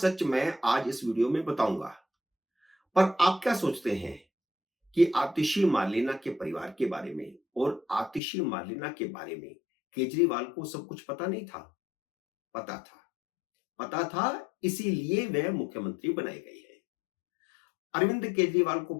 मैं आज इस वीडियो में बताऊंगा। पर आप क्या सोचते हैं कि आतिशी मार्लेना के परिवार के बारे में और आतिशी मार्लेना के बारे में केजरीवाल को सब कुछ पता नहीं था? पता था, इसीलिए वह मुख्यमंत्री बनाए गए हैं। अरविंद केजरीवाल को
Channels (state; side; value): drops out; right; at 8.2 s